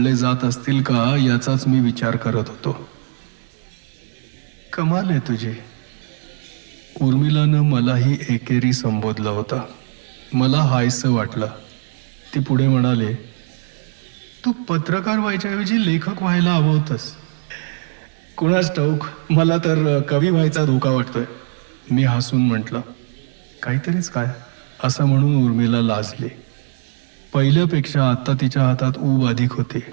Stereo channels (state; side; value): silent; left; 66 dB below the other